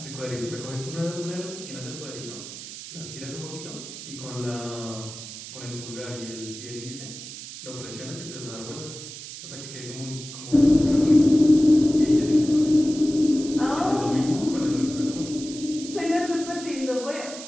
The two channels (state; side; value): noise; right; hiss, 12 dB below the sound